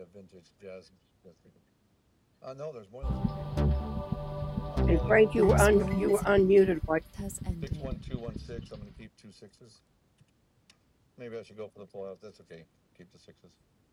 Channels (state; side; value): identical; both; correlation 1.00